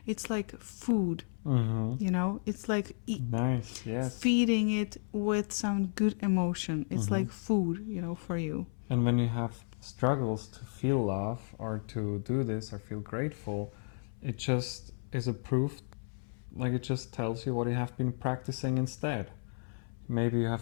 it's like food. It's like nice, yes. feeding it with some good emotion. It's like food, for you. And when you have struggles to feel love, or to do this, or feel grateful, it just is a proof. Like, it just tells you what you have been practicing instead. Maybe you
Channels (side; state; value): right; silent; 56 dB below the other